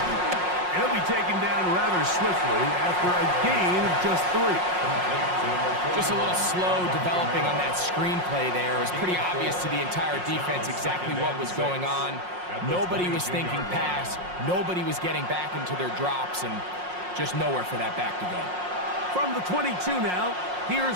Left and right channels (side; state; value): left; late; 5.5 ms